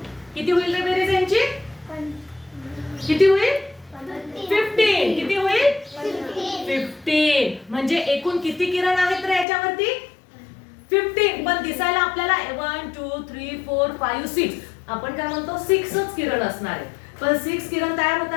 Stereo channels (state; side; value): drops out; right; at 9.5 s